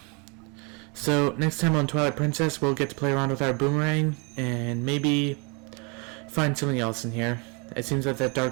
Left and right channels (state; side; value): quieter; left; 32.3 dB